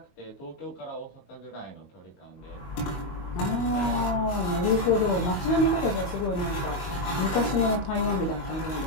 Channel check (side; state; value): right; late; 22 ms